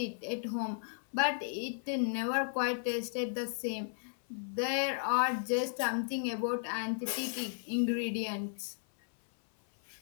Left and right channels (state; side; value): silent; right; 55 dB below the other